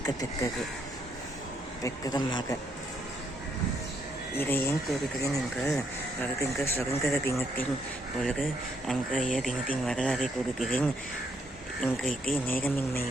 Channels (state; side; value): normal; both; correlation 0.72